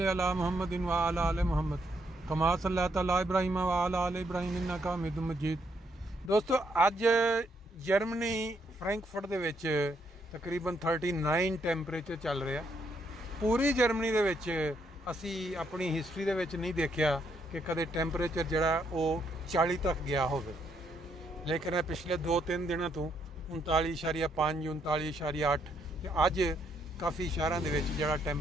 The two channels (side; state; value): both; normal; correlation 0.74